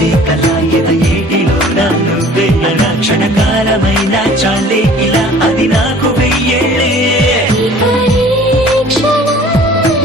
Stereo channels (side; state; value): both; normal; correlation 0.50